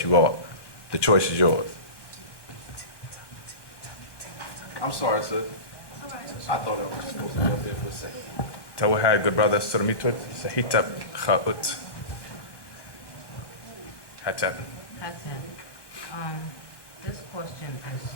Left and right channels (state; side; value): late; right; 1.1 ms